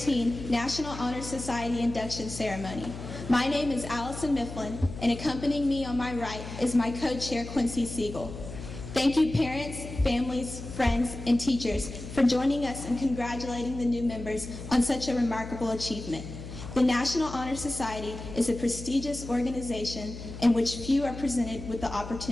National Honor Society Induction Ceremony. My name is Allison Mifflin, and accompanying me on my right is my co-chair, Quincy Siegel. Thank you, parents, families, friends, and teachers for joining us and congratulating the new members on such a remarkable achievement. The National Honor Society is a prestigious organization in which few are presented with the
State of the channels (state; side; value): noise; left; hum, 10 dB below the sound